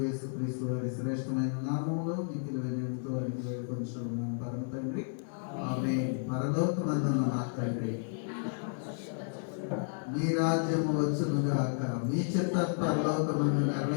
యేసుక్రీస్తు వారి శ్రేష్టమైన నామములో మిక్కిలి వినయంతో అడిగి వేడుకొంచున్నాం పరమ తండ్రి, ఆమేన్. పరలోకమందున్న మా తండ్రి, మీ రాజ్యము వచ్చును గాక, మీ చిత్త పరలోకమందు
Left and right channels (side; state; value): right; silent; 56 dB below the other